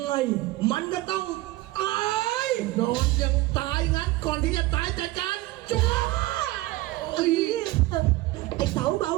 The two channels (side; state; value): left; quieter; 18.6 dB